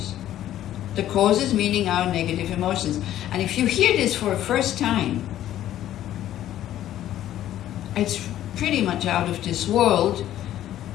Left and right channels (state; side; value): quieter; right; 12.5 dB